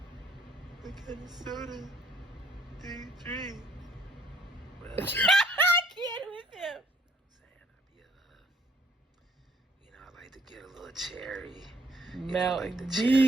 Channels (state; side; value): normal; both; correlation 0.64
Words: soda do you drink? Well, I can't with him. I like to get a little cherry. Mountain like